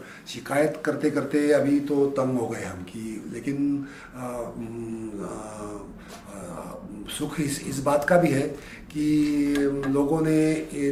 शिकायत करते करते अभी तो तंग हो गए हम कि, लेकिन सुख इस बात का भी है कि लोगों ने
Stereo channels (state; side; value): identical; both; correlation 1.00